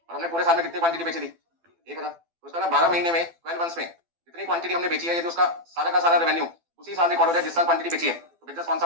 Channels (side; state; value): left; late; 12 ms